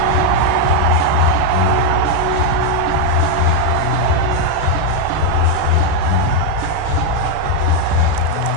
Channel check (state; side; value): different; both; correlation 0.01